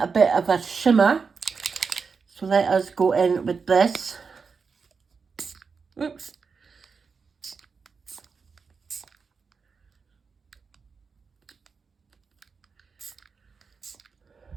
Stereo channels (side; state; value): left; quieter; 5.2 dB